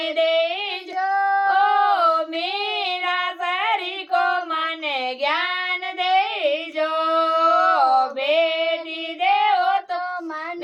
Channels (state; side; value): identical; both; correlation 1.00